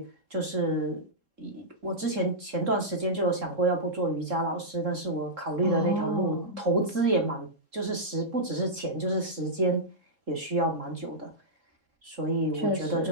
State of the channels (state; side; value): late; left; 3.7 ms